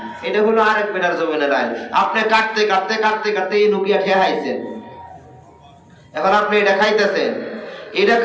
এটা হলো আরেক বেটার জমিনের আইল। আপনি কাটতে কাটতে কাটতে কাটতে এই নুকিয়া খেয়ে হাইছেন, এখন আপনি এটা খাইতেছেন। এটা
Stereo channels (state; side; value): identical; both; correlation 1.00